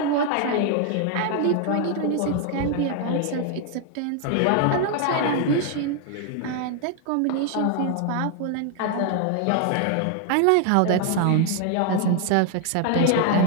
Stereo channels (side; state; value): both; different; correlation 0.00